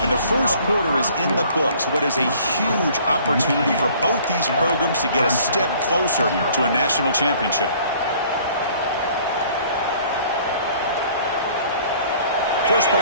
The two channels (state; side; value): inverted; both; correlation -0.54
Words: And the first quarter is in the books. What is a huge opportunity for both these programs to get a step closer to a national championship. First